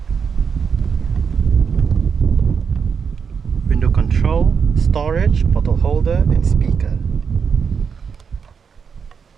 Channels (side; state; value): left; quieter; 6.3 dB